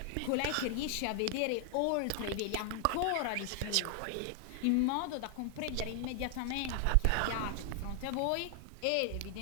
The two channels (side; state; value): both; different; correlation 0.00